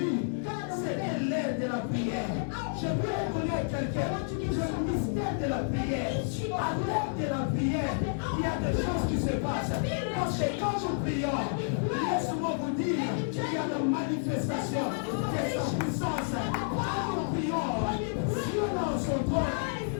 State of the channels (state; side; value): silent; right; 58 dB below the other